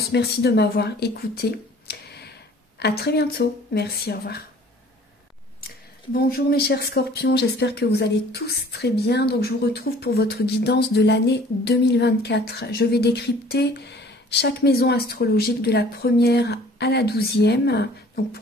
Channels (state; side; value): normal; both; correlation 0.52